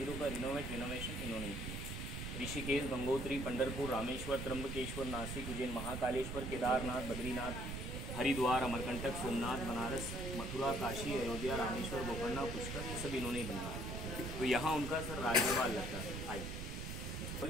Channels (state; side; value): noise; right; rumble, 5 dB below the sound